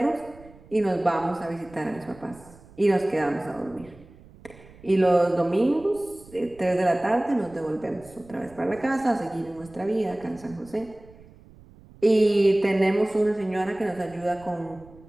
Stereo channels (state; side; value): noise; right; rumble, 23 dB below the sound